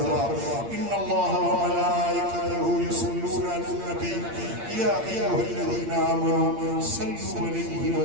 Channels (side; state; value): left; late; 8.7 ms